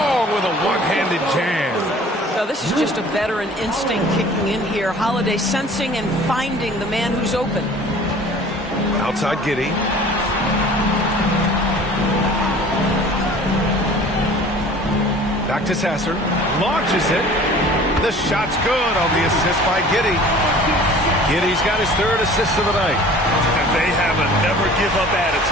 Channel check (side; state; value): both; normal; correlation 0.47